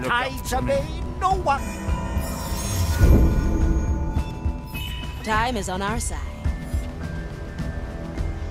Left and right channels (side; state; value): both; identical; correlation 1.00